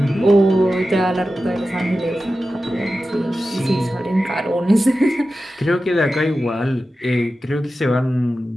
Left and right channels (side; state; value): both; normal; correlation 0.93